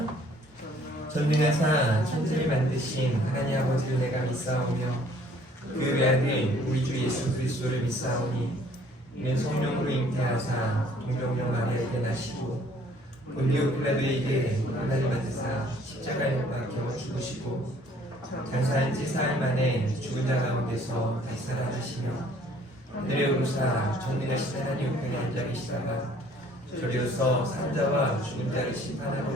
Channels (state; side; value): normal; both; correlation 0.58